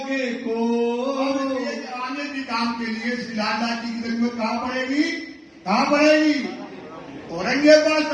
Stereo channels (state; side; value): identical; both; correlation 1.00